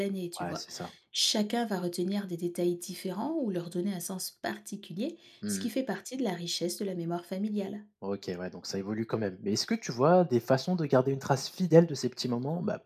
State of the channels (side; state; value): both; identical; correlation 1.00